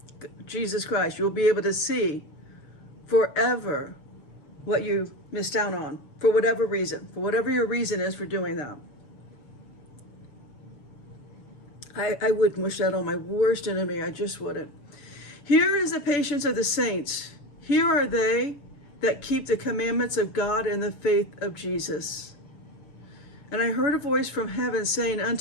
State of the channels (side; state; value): right; late; 7.0 ms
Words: Jesus Christ. You'll be able to see forever what you missed out on, for whatever reason, for whatever your reason is for doing that. I wouldn't wish that on my worst enemy. I just wouldn't. Here is the patience of the saints. Here are they that keep the commandments of God and the faith of Jesus. And I heard a voice from heaven saying